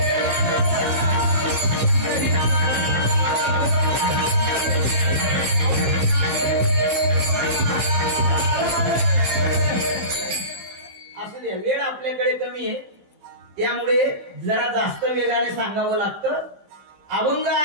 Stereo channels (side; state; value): left; late; 15 ms